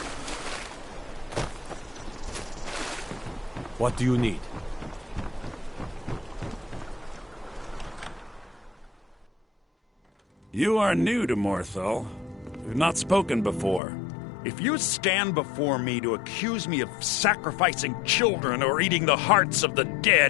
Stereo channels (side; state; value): right; drops out; at 13.8 s